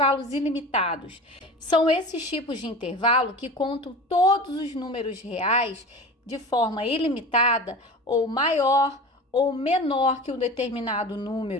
ilimitados? São esses tipos de intervalo que contam todos os números reais de forma ilimitada ou maior ou menor que um determinado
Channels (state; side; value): normal; both; correlation 0.34